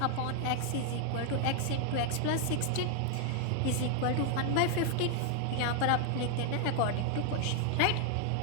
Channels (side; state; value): both; different; correlation 0.00